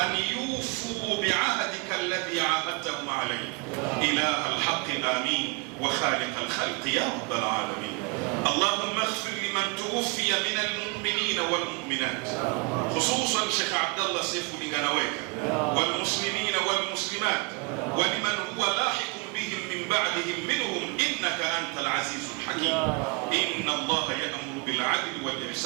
يوفوا بعهدك الذي عاهدتهم عليه. إله الحق آمين وخالق الخلق يا رب العالمين. اللهم اغفر لمن توفي من المؤمنين والمؤمنات خصوصا شيخ عبد الله سيف لغنويك والمسلمين والمسلمات ولمن هو لاحق بهم من بعدهم منهم إنك أنت العزيز الحكيم. إن الله يأمر بالعدل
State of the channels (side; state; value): left; quieter; 31.1 dB